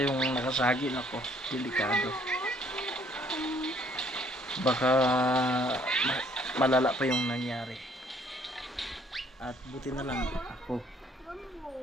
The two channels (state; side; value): normal; both; correlation 0.63